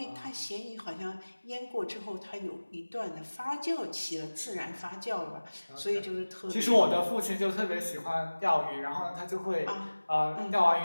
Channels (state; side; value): inverted; both; correlation -1.00